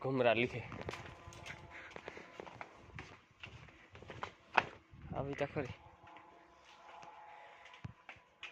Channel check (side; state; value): both; identical; correlation 1.00